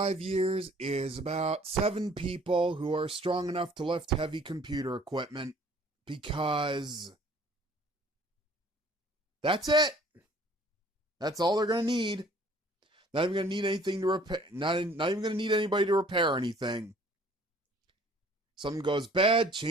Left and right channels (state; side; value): normal; both; correlation 0.54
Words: years is about 7 people who are strong enough to lift heavy computer equipment. Because that's it. That's all they're going to need. Not even going to need anything to repair. Not even going to need anybody to repair anything. Something goes bad,